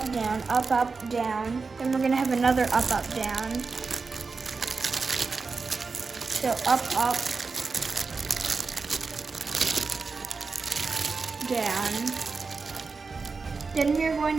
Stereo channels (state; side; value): quieter; left; 4.5 dB